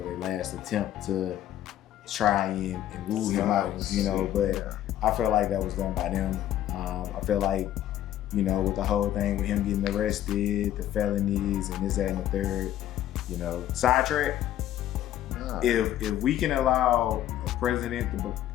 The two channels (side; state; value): right; quieter; 12.3 dB